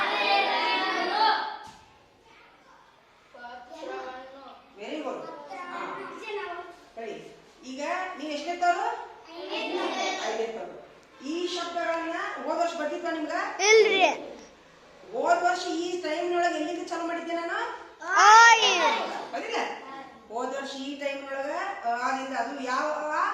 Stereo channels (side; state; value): both; identical; correlation 1.00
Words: ಪತ್ರವನ್ನು ವೆರಿ ಗುಡ್. ಸರಿ, ಈಗ ನೀವು ಎಷ್ಟನೇತ್ತವ್ರು? ಐದನೇತ್ತವ್ರು. ಈ ಶಬ್ದಗಳನ್ನ ಹೋದ ವರ್ಷ ಬರ್ತಿದ್ವ ನಿಮ್ಗ? ಇಲ್ರಿ. ಹೋದ ವರ್ಷ ಈ ಟೈಮ್ನೊಳಗೆ ಎಲ್ಲಿಂದ ಚಾಲು ಮಾಡಿದ್ದೆ ನಾನು? ಬದಿಲ್ಲ? ಹೋದ ವರ್ಷ ಈ ಟೈಮ್ನೊಳಗ ಆದಿಂದ ಅದು ಯಾವ